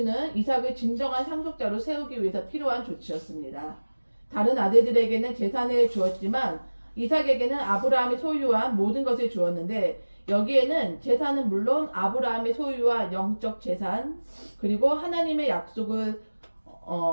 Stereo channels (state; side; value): inverted; both; correlation -1.00